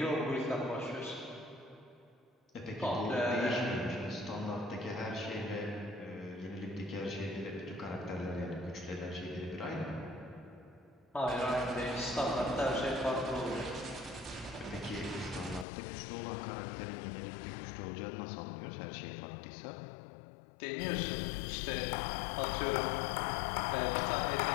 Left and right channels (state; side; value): drops out; right; at 15.7 s